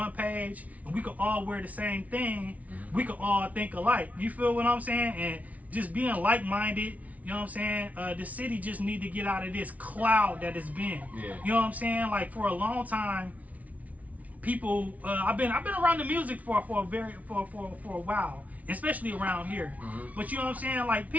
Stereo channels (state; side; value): late; left; 0.070 ms